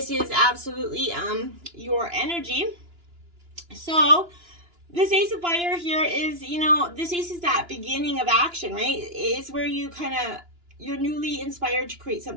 is absolutely your energy. So this Ace of Fire here is, this Ace is that beginning of action, right? It's where you're newly inspired to create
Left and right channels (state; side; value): late; left; 2.9 ms